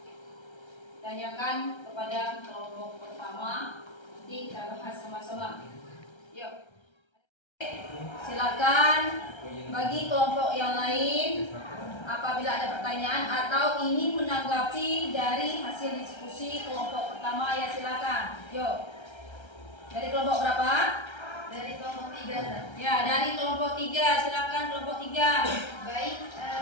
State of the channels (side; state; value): right; late; 1.3 ms